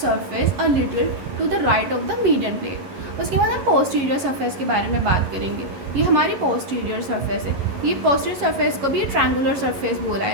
a little to the right of the median plane। उसके बाद हम पोस्टीरियर सरफेस के बारे में बात करेंगे। ये हमारी पोस्टीरियर सरफेस है, ये पोस्टीरियर सरफेस को भी ट्रायंगुलर सरफेस बोला है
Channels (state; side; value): late; left; 11 ms